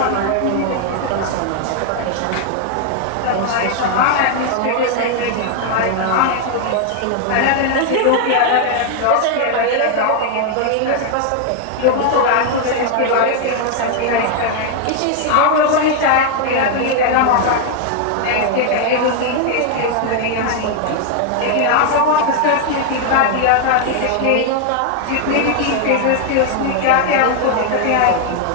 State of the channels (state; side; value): different; both; correlation 0.00